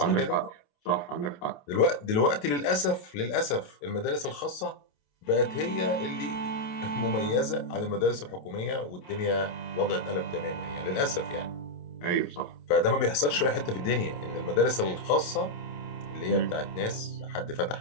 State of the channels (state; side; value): late; right; 28 ms